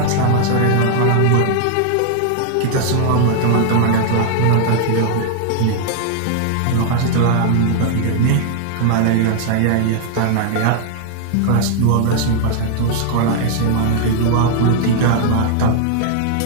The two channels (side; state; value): both; different; correlation 0.00